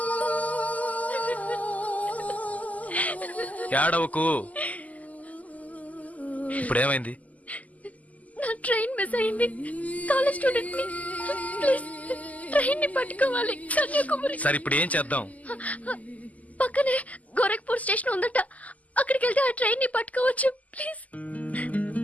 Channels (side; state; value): right; late; 0.075 ms